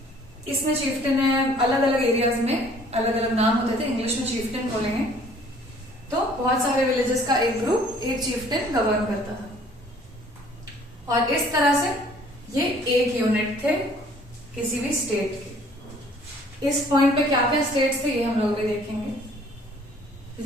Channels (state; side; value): normal; both; correlation 0.56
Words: इसमें चीफ्टेन है, अलग अलग एरियाज में अलग अलग नाम होते थे, इंग्लिश में चीफ्टेन बोलेंगे। तो बहुत सारे विलेजेस का एक ग्रुप एक चीफ्टेन गवर्न करता था। और इस तरह से ये एक यूनिट थे किसी भी स्टेट के। इस पॉइंट पे क्या क्या स्टेट्स थे ये हम लोग भी देखेंगे।